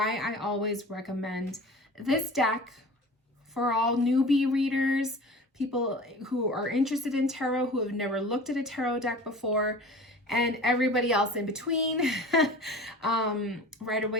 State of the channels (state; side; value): normal; both; correlation 0.39